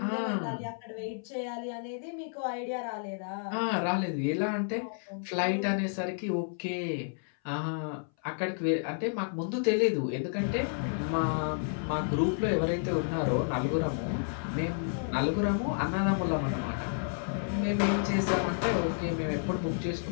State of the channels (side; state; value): right; silent; 57 dB below the other